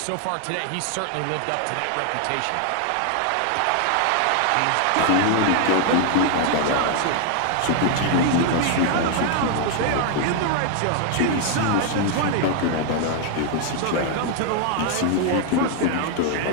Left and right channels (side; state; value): both; different; correlation 0.00